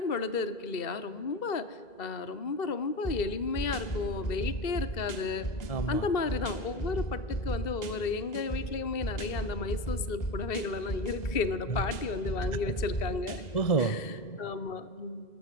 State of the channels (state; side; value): late; right; 2.0 ms